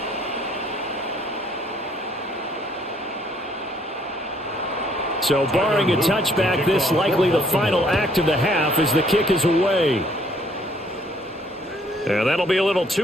So barring a touchback, this likely the final act of the half as the kick is away. And that'll be a little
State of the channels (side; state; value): both; normal; correlation 0.64